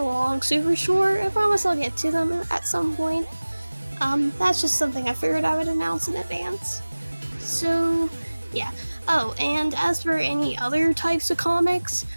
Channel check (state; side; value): inverted; both; correlation -1.00